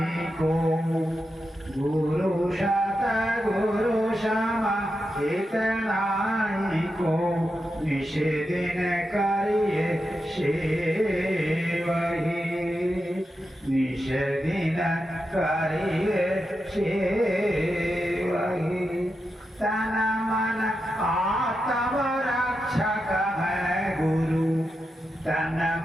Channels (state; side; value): normal; both; correlation 0.88